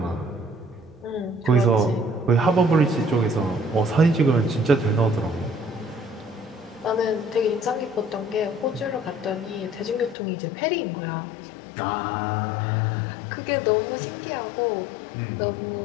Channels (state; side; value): drops out; right; at 10.2 s